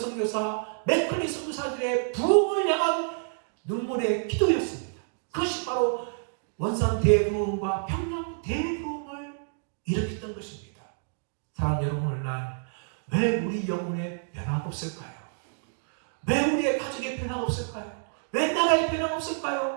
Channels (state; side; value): silent; left; digital silence